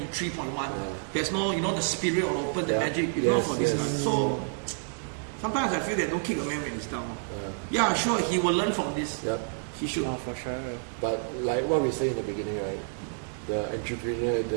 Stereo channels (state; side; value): silent; left; 59 dB below the other